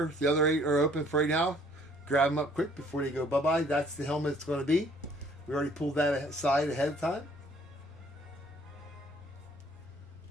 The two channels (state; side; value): normal; both; correlation 0.59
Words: 8 are open for right now. Grab them up quick before they go bye-bye. That's the helmet it's going to be. We already pulled that aside ahead of time.